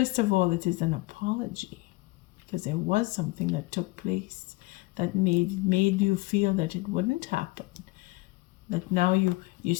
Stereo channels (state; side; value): quieter; right; 22.5 dB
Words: of all, it is an apology, because there was something that took place that made you feel that it wouldn't happen. That now you